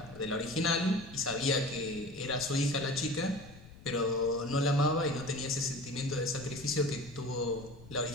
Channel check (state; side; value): noise; left; rumble, 19 dB below the sound